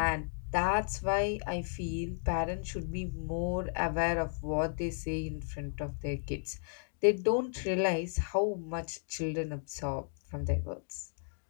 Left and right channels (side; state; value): right; silent; digital silence